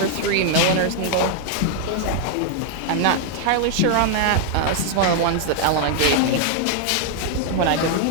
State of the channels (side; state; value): both; different; correlation 0.00